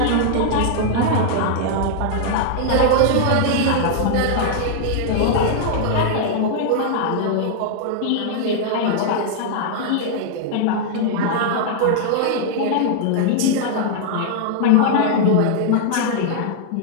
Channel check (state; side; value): different; both; correlation -0.01